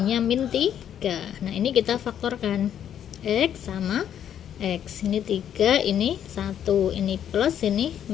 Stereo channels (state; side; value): quieter; right; 9.7 dB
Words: min 3. Nah ini kita faktorkan, X sama X, ini 3, ini 1, ini plus, ini